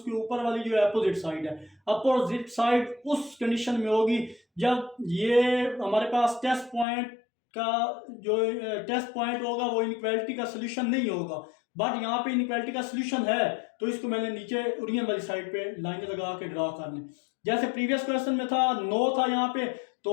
ऊपर वाली जो है अपोजिट साइड है। अपोजिट साइड उस कंडीशन में होगी जब ये हमारे पास टेस्ट पॉइंट का जो टेस्ट पॉइंट होगा वो इनइक्वालिटी का सोल्यूशन नहीं होगा, बट यहाँ पे इनइक्वालिटी का सोल्यूशन है। तो इसको मैंने नीचे ओरियन वाली साइड पे लाइन लगा के ड्रा कर लें। जैसे प्रीवियस क्वेश्चन में था नो था यहाँ पे,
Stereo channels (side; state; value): right; drops out; at 6.9 s